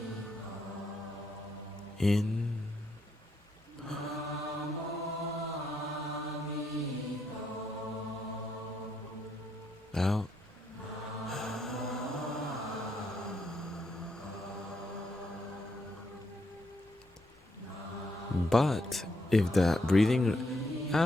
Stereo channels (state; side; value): normal; both; correlation 0.77